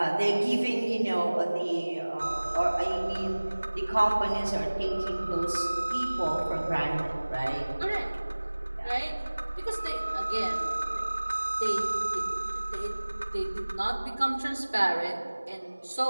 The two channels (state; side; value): inverted; both; correlation -1.00